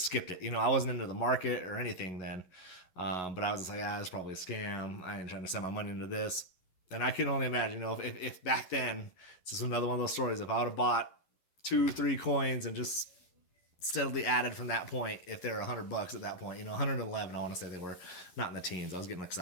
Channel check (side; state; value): right; late; 11 ms